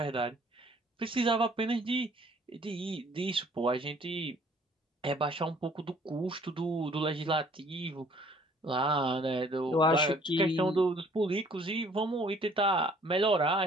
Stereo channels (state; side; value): normal; both; correlation 0.57